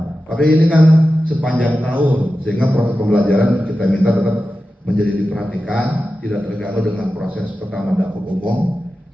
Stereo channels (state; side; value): normal; both; correlation 0.93